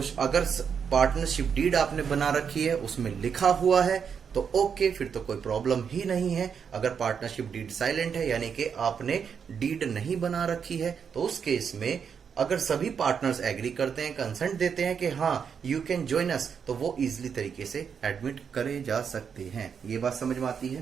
अगर पार्टनरशिप डीड आपने बना रखी है, उसमें लिखा हुआ है तो ओके, फिर तो कोई प्रॉब्लम ही नहीं है। अगर पार्टनरशिप डीड साइलेंट है, यानी कि आपने डीड नहीं बना रखी है, तो उस केस में अगर सभी पार्टनर्स एग्री करते हैं, कंसेंट देते हैं कि हाँ यू कैन ज्वाइन अस, तो वो इजिली तरीके से एडमिट करे जा सकते हैं। ये बात समझ में आती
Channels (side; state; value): left; quieter; 6.9 dB